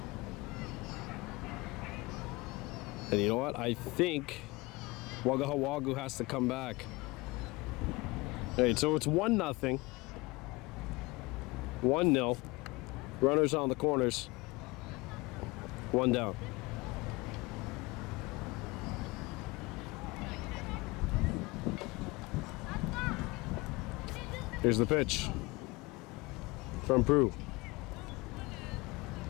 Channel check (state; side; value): quieter; right; 23.7 dB